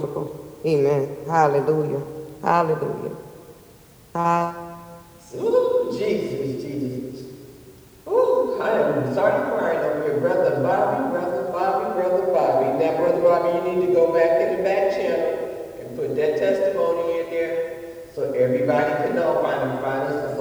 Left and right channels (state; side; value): identical; both; correlation 1.00